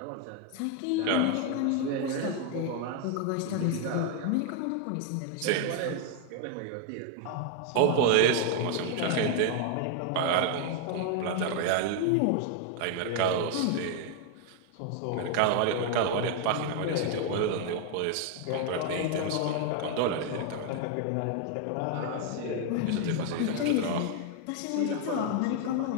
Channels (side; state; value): both; different; correlation 0.00